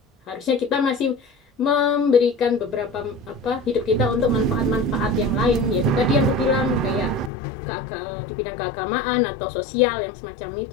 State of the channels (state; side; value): drops out; right; at 7.3 s